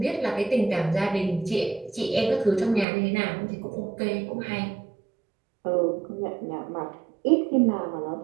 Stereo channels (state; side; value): drops out; left; at 2.9 s